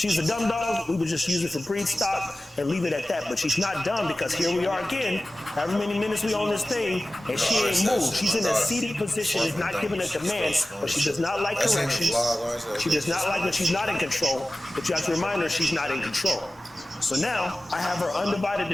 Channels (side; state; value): both; normal; correlation 0.96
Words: a dumb dog, we would just use it for breed stock and leave it at that. But she's not dumb because here we are again, however many minutes we on this thing, and she ain't moved. She's in a seated position, is not giving a command, but she does not like corrections. She does not like when she's not in control, but you have to remind her she's not in control. So now, I have her undivided